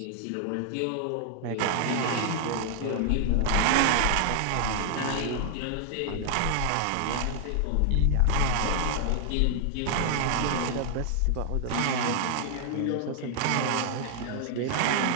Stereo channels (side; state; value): both; different; correlation 0.00